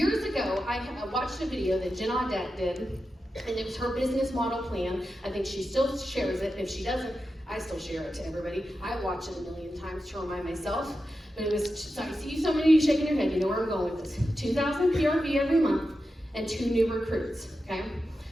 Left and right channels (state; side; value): normal; both; correlation 0.90